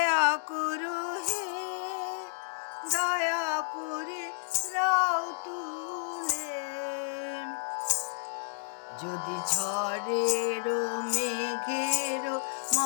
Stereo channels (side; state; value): right; silent; digital silence